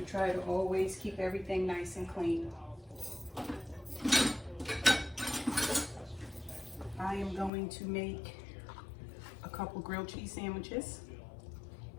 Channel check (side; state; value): right; drops out; at 7.5 s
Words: try to always keep everything nice and clean. I am going to make a couple grilled cheese sandwiches,